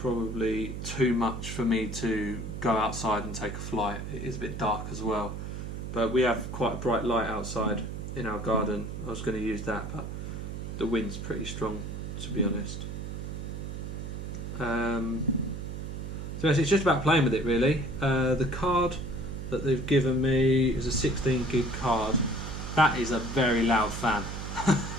too much for me to go outside and take a flight. It is a bit dark as well, but we have quite a bright light outside in our garden. I was going to use that, but the wind's pretty strong, to be honest. So it's just about playing with it, really. The card that they've given me is a 16 gig card. That is a very loud fan.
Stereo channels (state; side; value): noise; right; hum, 6 dB below the sound